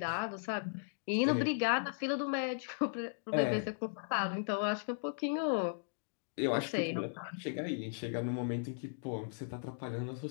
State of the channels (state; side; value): silent; right; digital silence